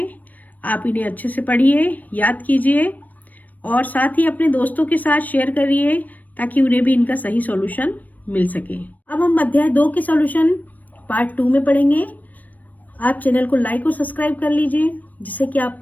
आप इन्हें अच्छे से पढ़िए, याद कीजिए और साथ ही अपने दोस्तों के साथ शेयर करिए ताकि उन्हें भी इनका सही सॉल्यूशन मिल सके। अब हम अध्याय 2 के सॉल्यूशन पार्ट 2 में पढ़ेंगे। आप चैनल को लाइक और सब्सक्राइब कर लीजिए जिससे कि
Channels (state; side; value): late; right; 0.082 ms